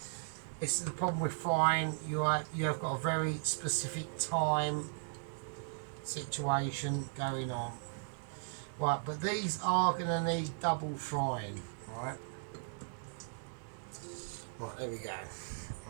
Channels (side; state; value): left; silent; digital silence